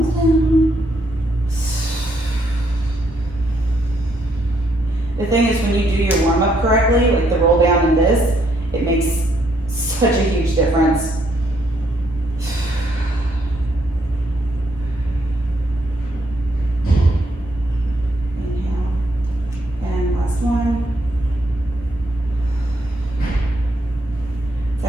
down. The thing is, when you do your warm-up correctly, like the roll down and this, it makes such a huge difference. Inhale, and last one. It's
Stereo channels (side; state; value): both; normal; correlation 0.73